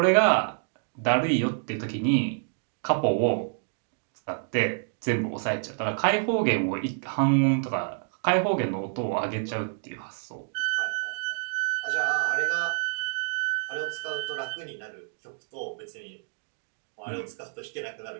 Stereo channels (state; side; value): silent; left; digital silence